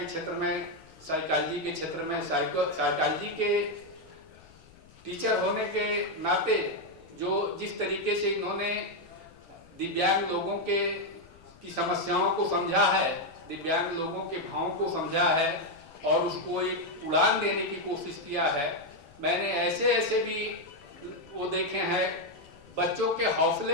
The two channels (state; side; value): noise; left; rumble, 25 dB below the sound